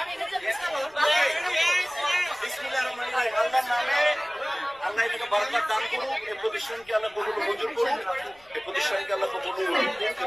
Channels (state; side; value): noise; left; rumble, 30 dB below the sound